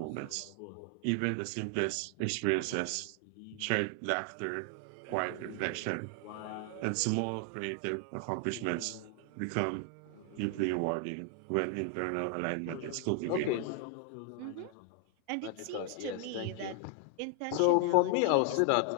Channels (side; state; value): both; different; correlation 0.00